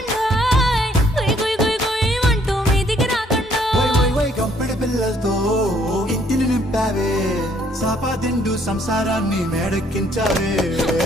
అంటూ మీదికి రాకుండా గంపెడి పిల్లలతో ఇంటిని నింపావే, సాపాదిండు సంసారాన్ని మేడెక్కించావే.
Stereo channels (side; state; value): both; normal; correlation 0.65